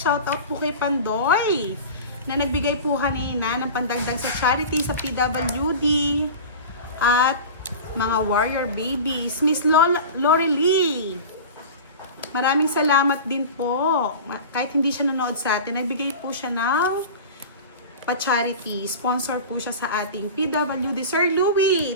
Shoutout po kay Pandoy, na nagbigay po kanina ng pandagdag sa charity sa PWD at mga warrior babies. Miss Lori Lee, maraming salamat din po. Kahit hindi siya nanood sa atin, nagbigay po siya ng pa-charity. Sponsor po siya sa ating PWD. Sir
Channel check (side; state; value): both; inverted; correlation -0.33